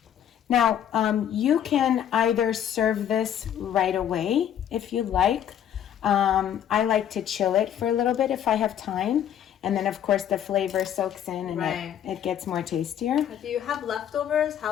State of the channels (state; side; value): quieter; right; 9.9 dB